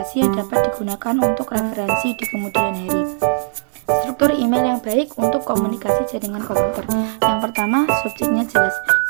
yang dapat digunakan untuk referensi di kemudian hari. Struktur email yang baik untuk komunikasi jaringan komputer. Yang pertama, subjeknya jelas.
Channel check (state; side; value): silent; left; digital silence